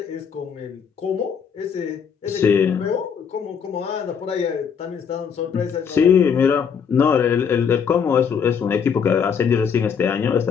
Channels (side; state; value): right; quieter; 7.0 dB